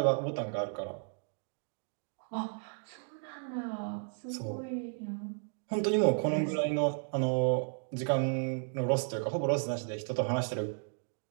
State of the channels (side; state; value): left; silent; 55 dB below the other